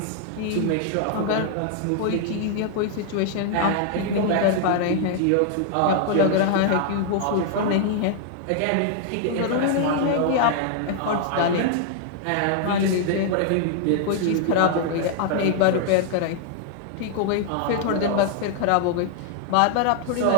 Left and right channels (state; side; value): different; both; correlation 0.00